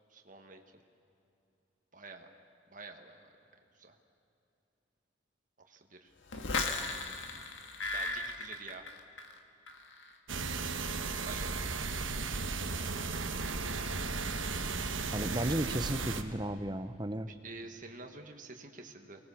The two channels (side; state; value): both; normal; correlation 0.44